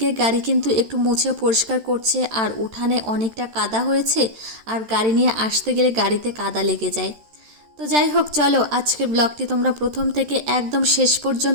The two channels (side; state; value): left; late; 13 ms